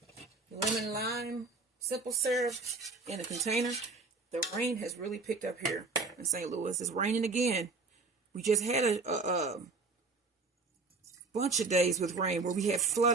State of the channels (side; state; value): left; quieter; 3.9 dB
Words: lemon lime simple syrup in a container. The rain has really picked up here in St. Louis. It's raining again. We just had a bunch of days with rain where we had